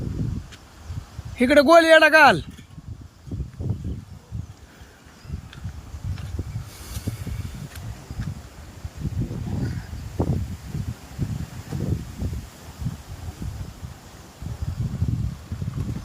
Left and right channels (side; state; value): both; identical; correlation 1.00